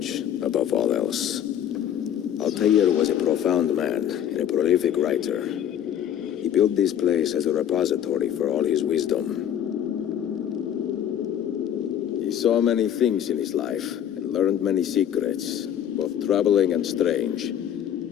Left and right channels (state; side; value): quieter; right; 10.0 dB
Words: above all else. Altaïr was a profound man and a prolific writer. He built this place as a repository for all his wisdom. He saw many things in his life and learned many secrets, both troubling and strange.